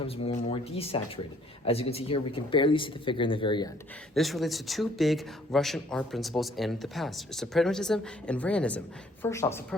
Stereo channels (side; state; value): both; normal; correlation 0.61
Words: more and more desaturated. As you can see here, we can barely see the figure in the very end. This relates to two big Russian art principles in the past, suprematism and realism. First off,